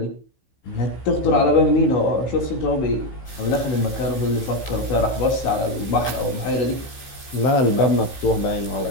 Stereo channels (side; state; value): right; late; 15 ms